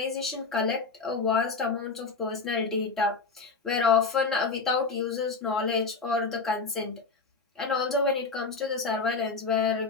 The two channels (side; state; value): right; quieter; 4.4 dB